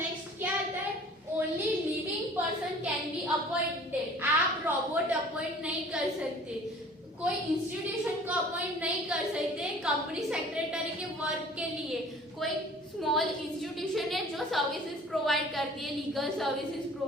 क्या आता है, only living person can be appointed. आप रोबोट अपॉइंट नहीं कर सकते, कोई इंस्टीट्यूशन को अपॉइंट नहीं कर सकते कंपनी सेक्रेटरी के वर्क के लिए। कोई स्मॉल इंस्टीट्यूशन है जो सर्विसेज प्रोवाइड करती है, लीगल सर्विसेज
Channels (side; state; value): both; normal; correlation 0.48